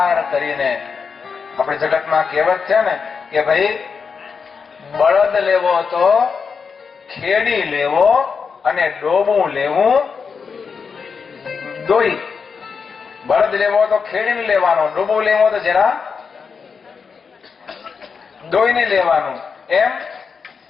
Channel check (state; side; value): quieter; right; 5.7 dB